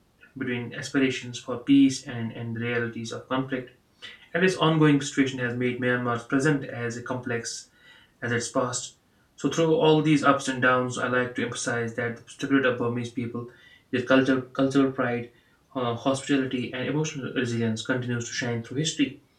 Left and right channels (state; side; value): identical; both; correlation 1.00